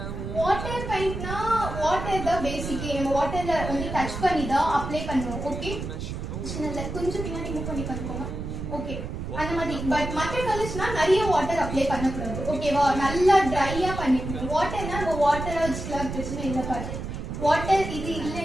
வாட்டர் பெயிண்ட்னா வாட்டர் தான் பேசிக்கே நம்ம வாட்டர்ல வந்து டச் பண்ணி தான் அப்ளை பண்ணுவோம் ஓகே சின்னல கொஞ்சம் பின்னாடி மூவ் பண்ணி பண்ணிக்கோங்க ஓகே அந்த மாதிரி பட் மற்ற கலர்ஸ்னா நிறைய வாட்டர் அப்ளை பண்ணக்கூடாது ஓகேவா நல்லா ட்ரையா பண்ணிக்கணும் வாட்டர்னா நம்ம வாட்டரா வச்சுக்கலாம் பிரச்சனை இல்லை பாரு வாட்டர் இது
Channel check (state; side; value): noise; right; rumble, 6 dB below the sound